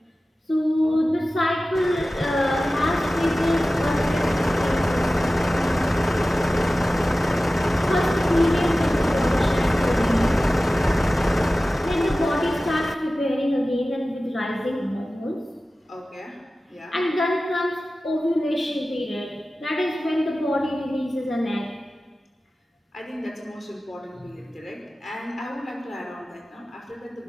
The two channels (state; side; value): normal; both; correlation 0.96